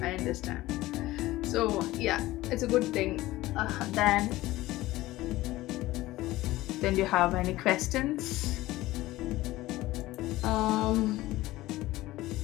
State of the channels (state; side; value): quieter; right; 17.5 dB